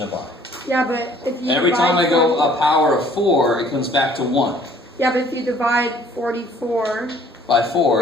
of I. Yeah, but if you Every time I go a power of 4, it comes back to 1. Yeah, but if you divide 44 By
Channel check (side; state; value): both; normal; correlation 0.56